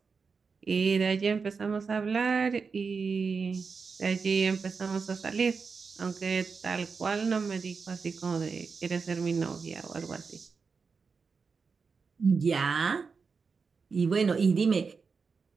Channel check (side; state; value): left; quieter; 5.1 dB